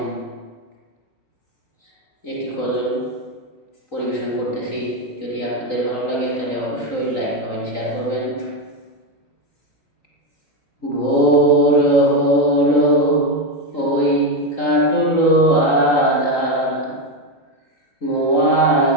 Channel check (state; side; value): late; right; 3.9 ms